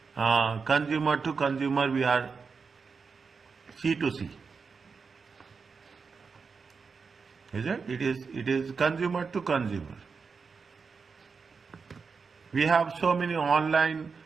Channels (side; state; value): left; quieter; 5.2 dB